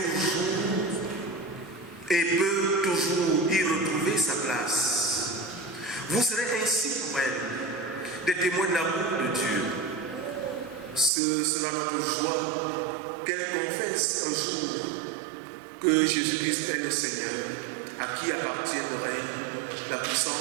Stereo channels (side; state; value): left; drops out; at 11.1 s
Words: et peut toujours y retrouver sa place. Vous serez ainsi pour elle des témoins de l'amour de Dieu. Ce sera notre joie qu'elle confesse un jour que Jésus-Christ est le Seigneur, à qui appartient le règne, la